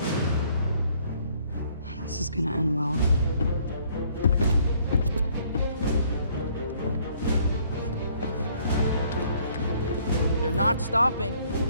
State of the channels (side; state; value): both; inverted; correlation -0.63